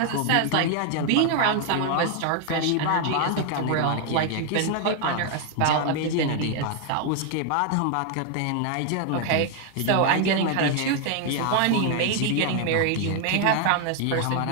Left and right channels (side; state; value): both; different; correlation 0.00